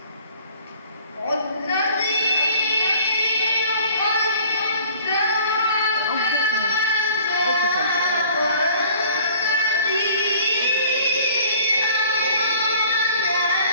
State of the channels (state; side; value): inverted; both; correlation -0.51